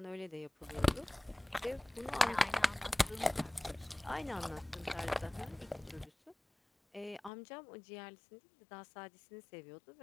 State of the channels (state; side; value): drops out; right; at 7.3 s